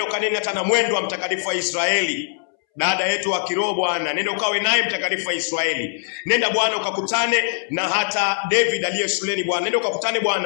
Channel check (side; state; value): right; silent; 65 dB below the other